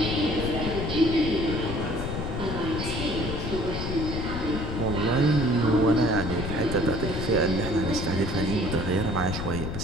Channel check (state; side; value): noise; left; rumble, 4 dB below the sound